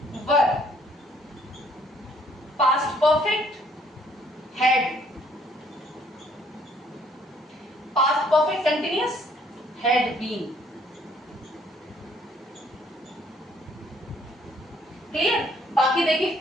were, past perfect had, past perfect continuous had been। Clear. बाकी देखिए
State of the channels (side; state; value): both; normal; correlation 0.63